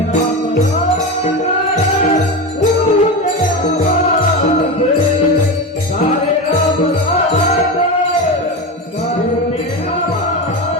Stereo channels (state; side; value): normal; both; correlation 0.21